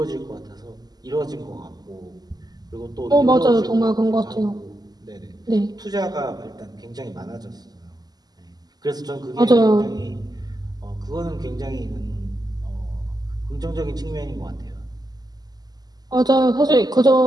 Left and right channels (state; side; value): late; left; 0.20 ms